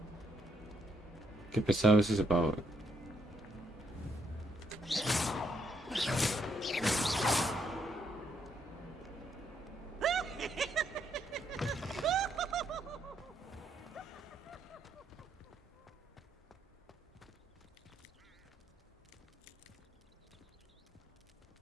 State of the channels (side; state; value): both; normal; correlation 0.75